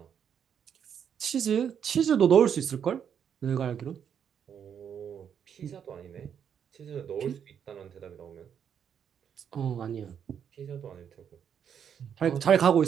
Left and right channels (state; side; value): quieter; left; 8.2 dB